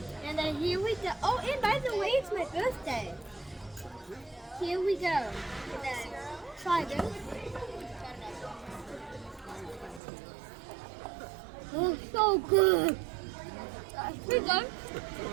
And then here we go. Oh, and by the way, it's my birthday. Here we go. And then try this. Oh, so good. Pretty good.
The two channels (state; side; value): drops out; left; at 10.0 s